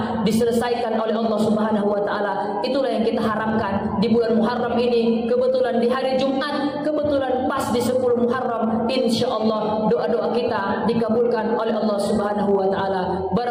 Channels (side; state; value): both; identical; correlation 1.00